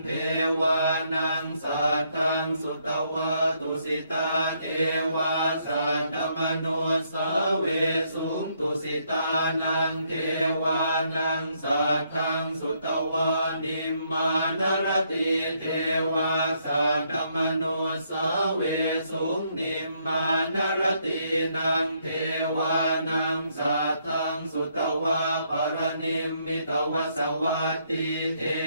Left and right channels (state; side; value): inverted; both; correlation -0.73